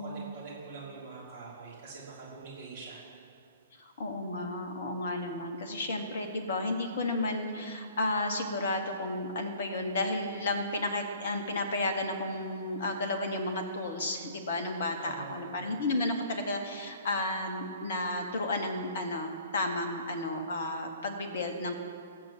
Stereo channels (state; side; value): inverted; both; correlation -0.53